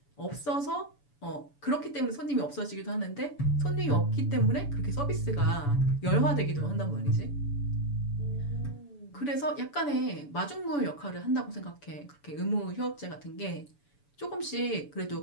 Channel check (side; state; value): right; late; 7.0 ms